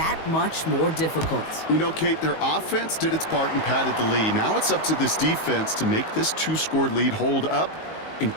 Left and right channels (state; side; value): late; right; 19 ms